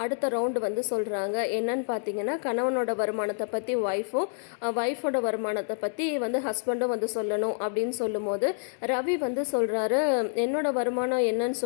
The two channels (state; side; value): silent; right; 57 dB below the other